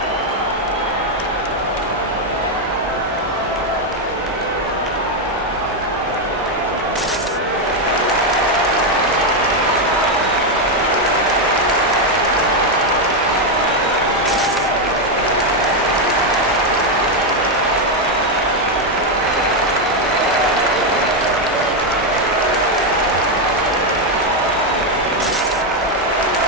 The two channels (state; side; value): normal; both; correlation 0.04